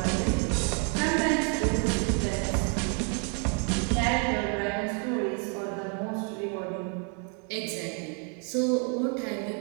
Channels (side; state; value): left; quieter; 39.6 dB